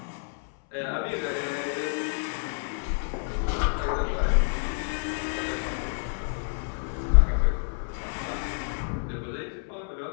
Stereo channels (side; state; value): right; silent; 59 dB below the other